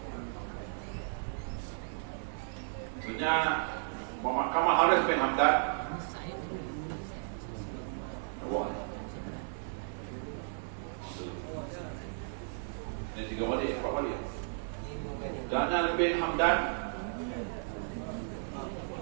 Sebenarnya Muhammad Kamal Haris bin Hamdan. Wah. Ini 3 balik, 4 balik. Daniel bin Hamdan.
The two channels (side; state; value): left; silent; digital silence